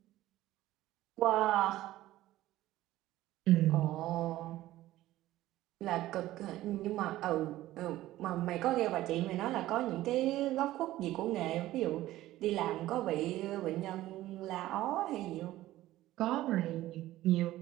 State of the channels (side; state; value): left; quieter; 15.5 dB